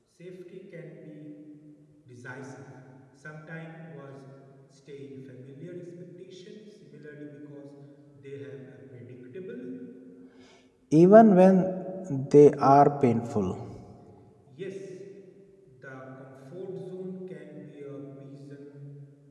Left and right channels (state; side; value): identical; both; correlation 1.00